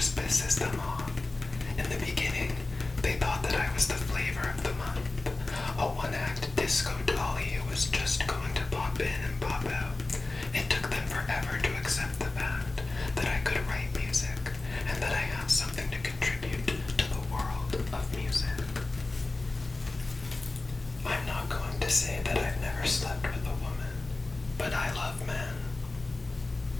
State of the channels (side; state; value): right; quieter; 3.2 dB